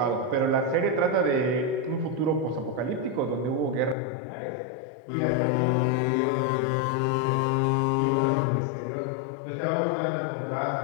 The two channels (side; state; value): right; drops out; at 4.0 s